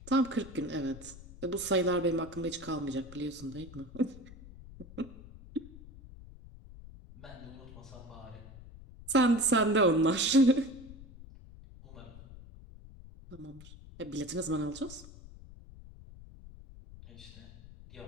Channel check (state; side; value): noise; left; rumble, 17 dB below the sound